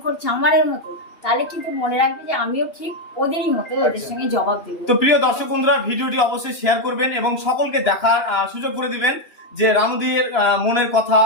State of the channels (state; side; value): late; right; 2.9 ms